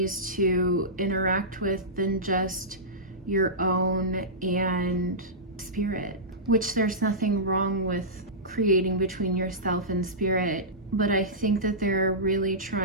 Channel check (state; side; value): normal; both; correlation -0.16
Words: to interact with than just your own and spirit. which there's nothing wrong with creating between yourself and spirit. But I think that they're really